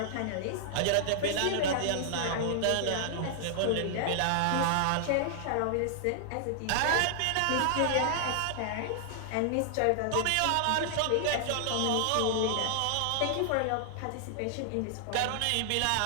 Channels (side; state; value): both; different; correlation -0.01